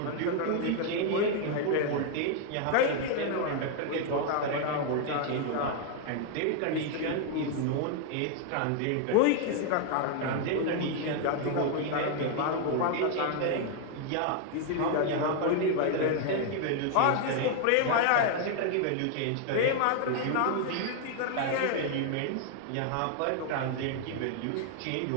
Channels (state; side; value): different; both; correlation 0.00